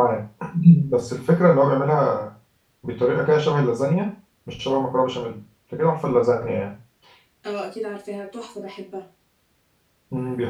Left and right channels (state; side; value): identical; both; correlation 1.00